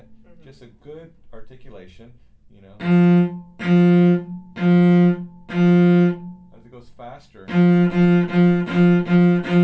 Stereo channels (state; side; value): identical; both; correlation 1.00